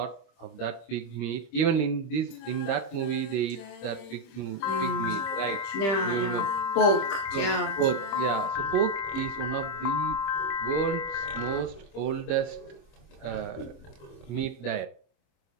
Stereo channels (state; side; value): late; right; 25 ms